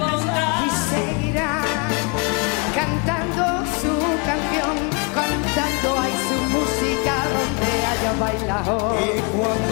Y seguirá cantando su canción, cantando ahí su música donde haya bailado. Y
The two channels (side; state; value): right; quieter; 33.0 dB